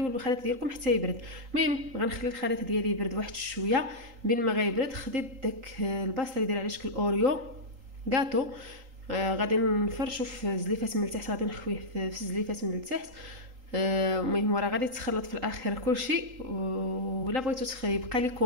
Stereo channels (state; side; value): late; left; 3.8 ms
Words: الخليط ديالكم حتى يبرد. المهم غنخلي الخليط ديالي يبرد واحد شويه. بين ما غيبرد خديت داك الباص اللي داير على شكل اوريو غاتو، غادي نفرشو في زليفات من التحت، غادي نخويه في زليفات من التحت. المهم راه غادي تخلط في الاخر كلشي. ولا بغيتو يبقى